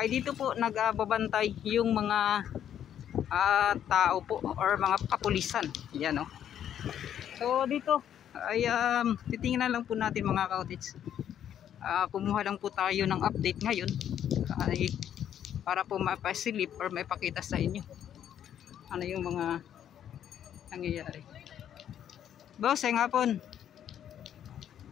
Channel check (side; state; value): right; quieter; 9.9 dB